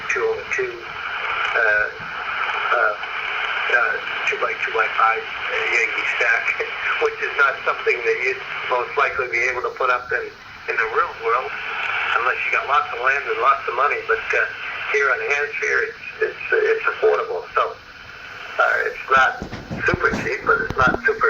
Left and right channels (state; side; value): identical; both; correlation 1.00